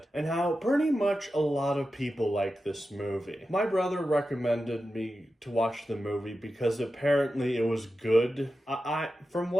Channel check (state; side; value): normal; both; correlation 0.92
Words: and how pretty much a lot of people like this movie. My brother recommended me to watch the movie because apparently it was good. From